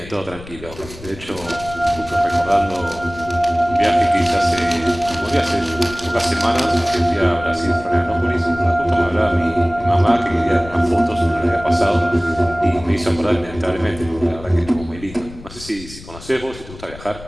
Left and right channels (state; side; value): noise; left; rumble, 16 dB below the sound